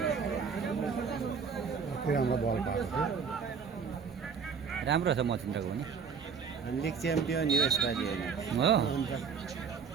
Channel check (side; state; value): left; quieter; 6.1 dB